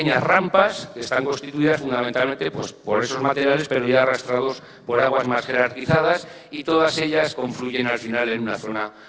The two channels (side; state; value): both; identical; correlation 1.00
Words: rampas que están constituidas fundamentalmente pues, por esos materiales, pero ya arrastrados por aguas más jerarquizadas, y todas ellas confluyen al final en una zona